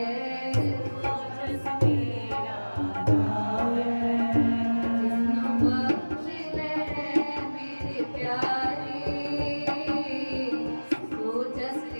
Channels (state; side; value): inverted; both; correlation -1.00